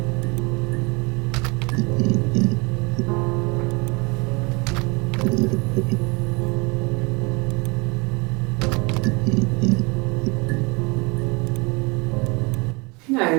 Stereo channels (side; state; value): left; quieter; 28.4 dB